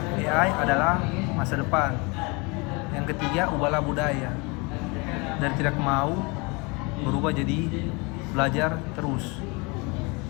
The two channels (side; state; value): right; quieter; 28.4 dB